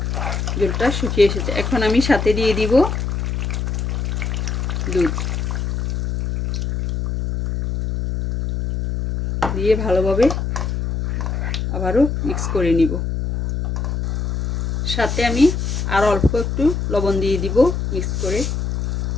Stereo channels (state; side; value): noise; left; hum, 1 dB below the sound